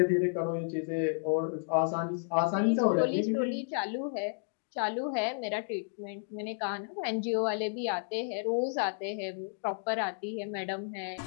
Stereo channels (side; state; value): right; silent; digital silence